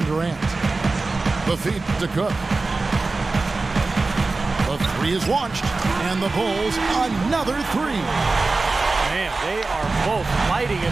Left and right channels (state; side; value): quieter; left; 3.6 dB